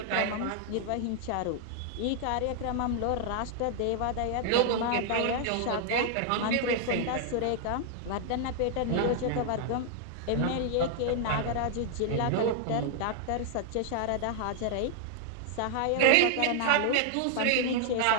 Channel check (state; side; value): different; both; correlation 0.00